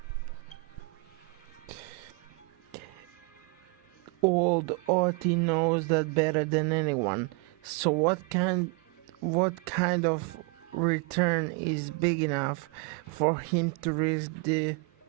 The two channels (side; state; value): left; quieter; 30.2 dB